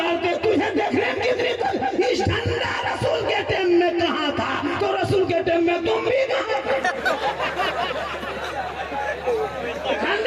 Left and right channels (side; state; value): both; identical; correlation 1.00